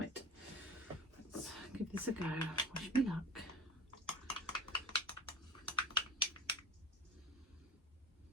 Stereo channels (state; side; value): normal; both; correlation 0.34